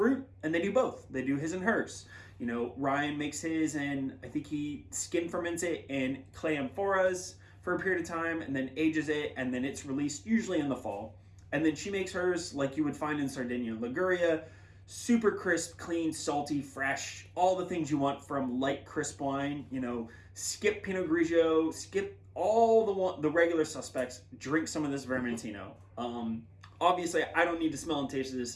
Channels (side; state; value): both; identical; correlation 1.00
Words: and they do both. They do his and hers. Ryan makes his, and I think he skin ferments it in clay amphoras for a period of time, and then ages it, and then it's released usually in the fall. And then she makes hers like you would find in Sardinia and Liguria, super crisp, clean, salty, fresh, all the things you want from light, crisp wine. Skip Pinot Grigio, skip all the regular suspects, drink some of this Vermentino. Obviously, I don't need to smell and taste